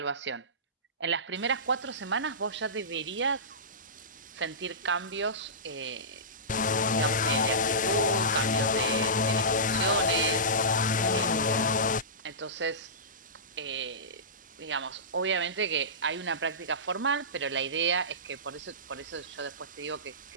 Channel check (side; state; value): both; normal; correlation -0.19